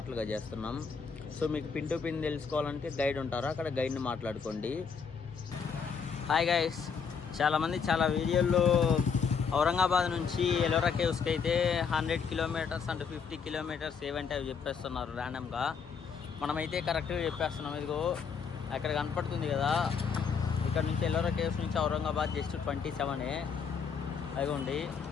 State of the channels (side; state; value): right; quieter; 6.1 dB